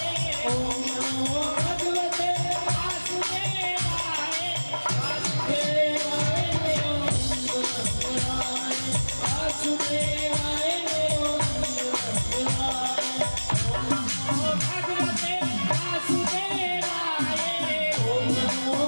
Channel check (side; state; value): both; inverted; correlation -1.00